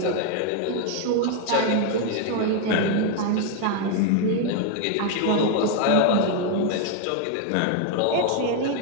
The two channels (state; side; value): different; both; correlation 0.00